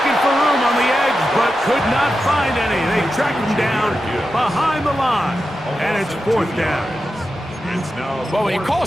for room on the edge, but could not find any. They track him down behind the line, and it's 4th down. Well, when you call a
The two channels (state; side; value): normal; both; correlation 0.90